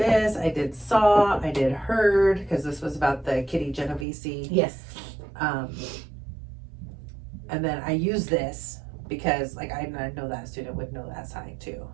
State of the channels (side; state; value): left; drops out; at 4.0 s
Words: I did saw, I did heard, because this was about the Kitty Genovese. Yes. And then I use this because, like, I know that student would know that sign too.